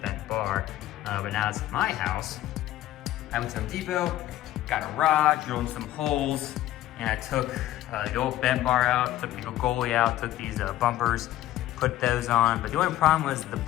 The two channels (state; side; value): quieter; right; 14.1 dB